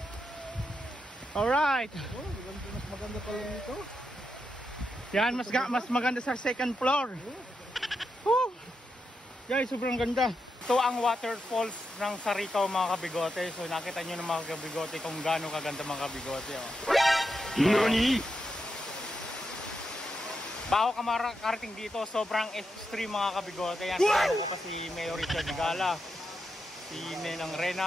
alright. Oh, mas maganda pala nito. Yan, mas maganda sa second floor. Guys, sobrang ganda. Ito ang waterfalls ng Sarikaw mga kabigote. So nakita nyo ng mga kabigote kung gaano kaganda mga kabigote. Oh. Nani? Bago ka makarating dito, sobrang extreme mga kabigote. Yan, kasama ko pa si Mayor Richard Gala, si Ninang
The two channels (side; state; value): both; normal; correlation 0.85